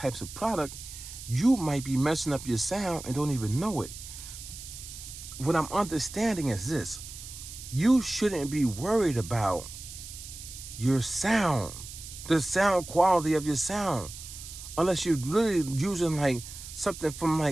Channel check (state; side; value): noise; right; hiss, 12 dB below the sound